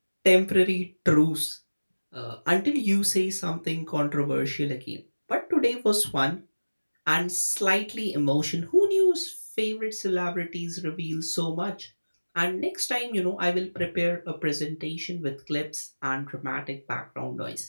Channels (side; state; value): both; inverted; correlation -1.00